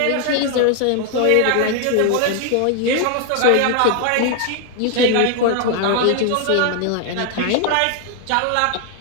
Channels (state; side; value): different; both; correlation 0.00